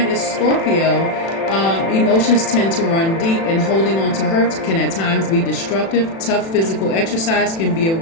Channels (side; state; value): right; late; 36 ms